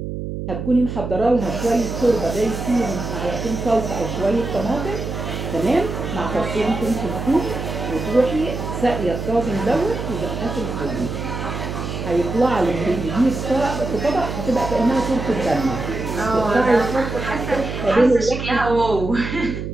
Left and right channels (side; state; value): right; noise; hum, 6 dB below the sound